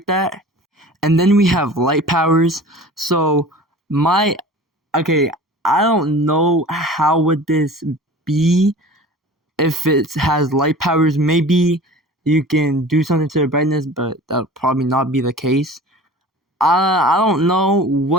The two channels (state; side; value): normal; both; correlation 0.41